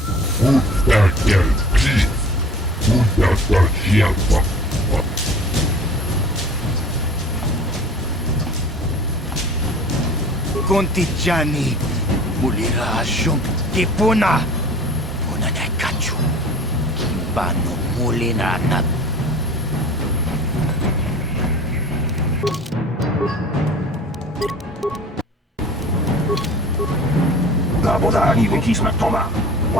Kontijani, mulira shum, kipuna, puna na kachu, kimbano mulina na. Labodani wikisma toma,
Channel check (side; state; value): both; normal; correlation 0.43